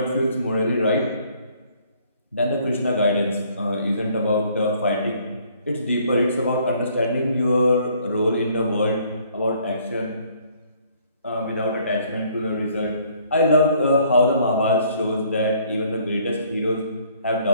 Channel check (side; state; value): both; inverted; correlation -0.62